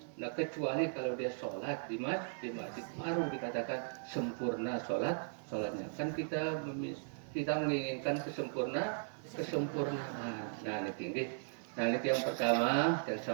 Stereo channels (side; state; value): left; silent; digital silence